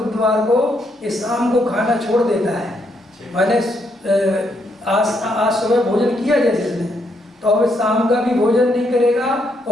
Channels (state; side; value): normal; both; correlation 0.76